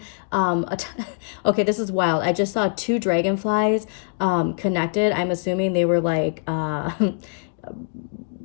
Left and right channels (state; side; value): silent; right; digital silence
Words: okay, this is wild. I just saw two dragonflies connected. I'm assuming they were like